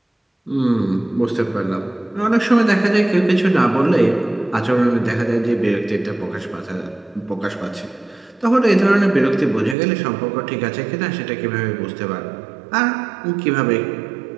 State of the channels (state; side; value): drops out; left; at 9.8 s